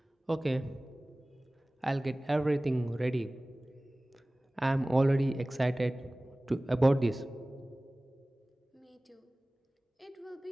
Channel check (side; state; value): both; normal; correlation 0.98